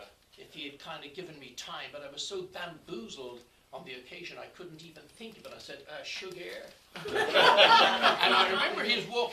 if he had kind of given me time, but I was so bamboozled on the occasion I couldn't even think of it. I said, sugar. And I remember he was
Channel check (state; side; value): identical; both; correlation 1.00